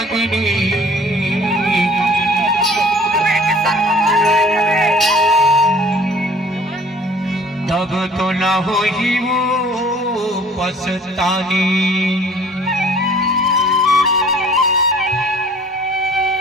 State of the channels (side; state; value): both; normal; correlation 0.52